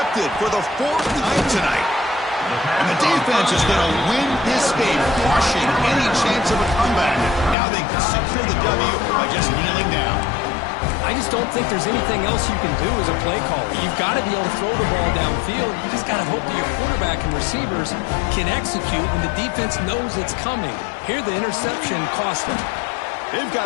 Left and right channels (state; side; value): drops out; right; at 7.6 s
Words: for the 4th time tonight. And the defense is going to win this game, crushing any chance of a comeback. Now they can secure the W by just kneeling down. I just don't think there's anything else you can do as a play caller. You've got to be able to throw the ball downfield. You just got to hope that your quarterback and receivers can execute when the defense knows it's coming. Here, the interception cost them. They've